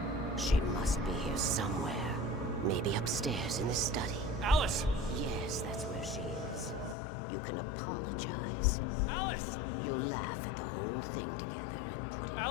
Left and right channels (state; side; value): drops out; right; at 7.0 s